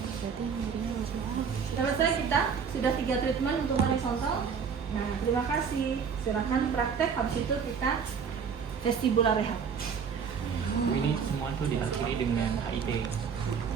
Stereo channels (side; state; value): left; quieter; 6.5 dB